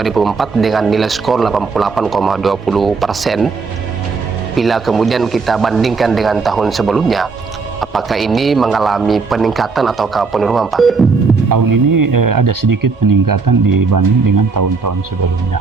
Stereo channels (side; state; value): left; quieter; 4.6 dB